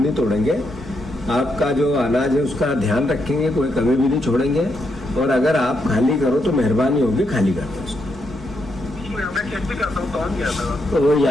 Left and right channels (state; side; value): normal; both; correlation 0.80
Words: तोड़ेंगे। आपका जो अनाज है उसका ध्यान रखेंगे, कोई कमी भी नहीं छोड़ेंगे। और अगर आप खाली करो तो मेहरबानी होगी, खाली कर दो उसको। तो वो